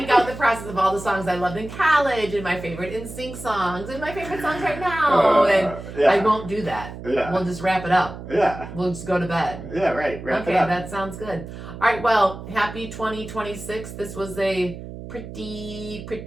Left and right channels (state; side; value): noise; right; hum, 11 dB below the sound